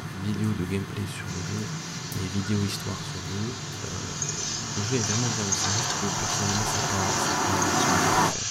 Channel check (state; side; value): identical; both; correlation 1.00